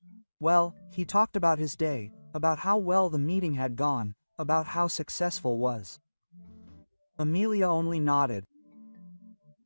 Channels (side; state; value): both; inverted; correlation -1.00